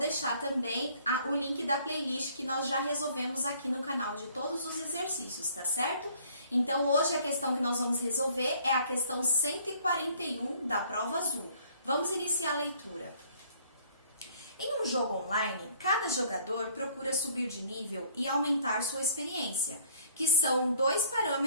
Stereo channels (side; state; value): both; inverted; correlation -0.57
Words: também o link da playlist que nós já resolvemos aqui no canal de todos os exercícios, tá certo? Então, hoje a questão que nós vamos resolver é a questão 141 da prova azul. Vamos iniciar a leitura. Em um jogo online, cada jogador procura subir de nível e aumentar sua experiência, que são dois